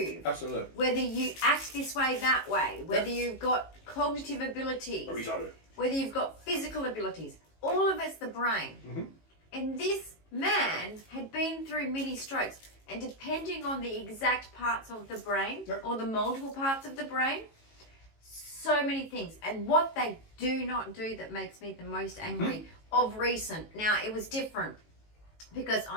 absolutely, whether you act this way, that way, whether you've got cognitive abilities, whether you've got physical abilities, all of it's the brain. And this man had been through many strokes, and depending on the exact parts of the brain or the multiple parts of the brain, so many things. And what they do not do that makes me the most angry of recent. Now, it was different because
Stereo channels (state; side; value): late; right; 18 ms